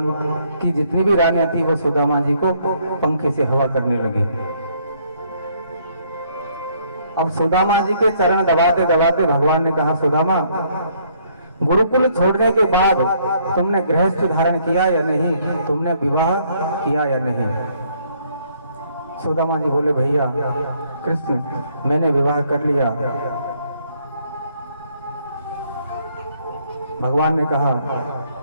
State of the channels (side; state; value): both; inverted; correlation -0.66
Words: की जितनी भी रानियां थी वो सुदामा जी को पंखे से हवा करने लगी। अब सुदामा जी के चरण दबाते दबाते भगवान ने कहा, सुदामा, गुरुकुल छोड़ने के बाद तुमने गृहस्थ धारण किया या नहीं? तुमने विवाह किया या नहीं? सुदामा जी बोले, भैया कृष्ण, मैंने विवाह कर लिया। भगवान ने कहा,